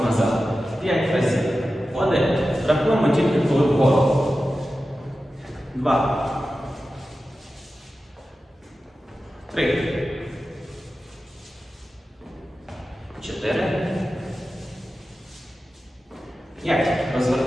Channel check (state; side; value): normal; both; correlation 0.93